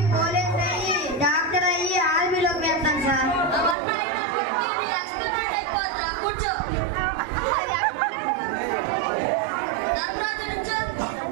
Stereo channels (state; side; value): drops out; left; at 3.8 s